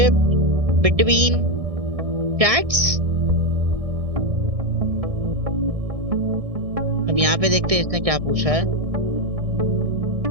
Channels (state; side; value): late; left; 1.6 ms